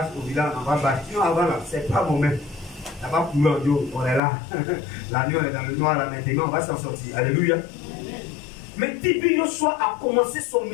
au village, on va bâche. Sinon avant là, c'est pas mon même. Là-bas pour l'audio, on est là. La nuit on est dans le noir là maintenant, on va s'en sortir. Alléluia. Mais Tibi Yoshua a commencé son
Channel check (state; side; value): drops out; right; at 4.2 s